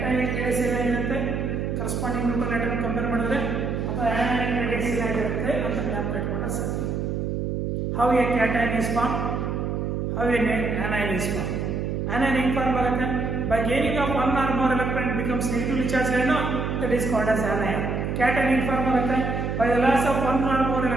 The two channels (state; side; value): noise; right; hum, 1 dB below the sound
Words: ರೇಡಿಯಸ್ ಏನಾಗಿರುತ್ತೆ ಕರೆಸ್ಪಾಂಡಿಂಗ್ ನ್ಯೂಟ್ರಲ್ ಆಟಮ್ ಕಂಪೇರ್ ಮಾಡಿದ್ರೆ, ಅಥವಾ ಸೈಜ್ ಏನಾಗಿರುತ್ತೆ ಅಂತ ಜ್ಞಾಪಕ ಇಟ್ಕೊಂಡ್ರೆ ಸಾಕು. How a cation is form, how a anion is formed. Anion ಹೆಂಗ್ ಫಾರ್ಮ್ ಆಗುತ್ತೆ? By gaining of one or more electron it becomes negatively charged ion, that is called as anion. Cation ಹೆಂಗ್ form ಆಗುತ್ತೆ? By the loss of one or more